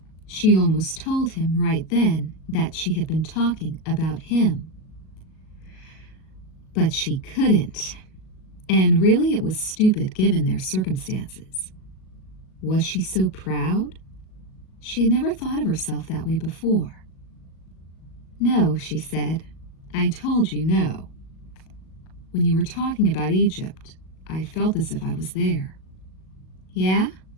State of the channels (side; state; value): right; late; 37 ms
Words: She almost told him right then that she had been talking about him. But she couldn't. And really it was stupid given their circumstances. Was she so proud? She had never thought of herself that way before. No, she said. I told you no. When you were talking about Egypt, I felt as if I was there. Yeah?